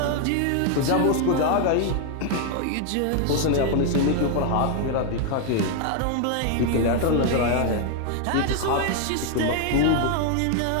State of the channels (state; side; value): different; both; correlation 0.00